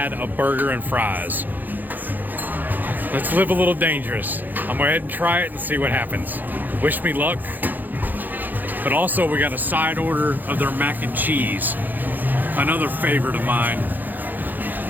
a burger and fries. Let's live a little dangerous. I'm gonna go ahead and try it and see what happens. Wish me luck. But also, we got a side order of their mac and cheese. Another favorite of mine.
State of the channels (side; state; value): left; late; 0.086 ms